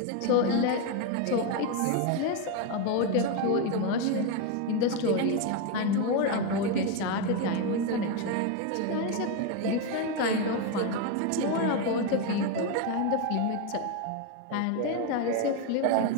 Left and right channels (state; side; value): different; both; correlation 0.02